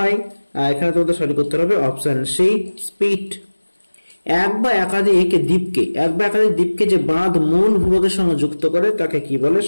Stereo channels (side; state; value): both; inverted; correlation -1.00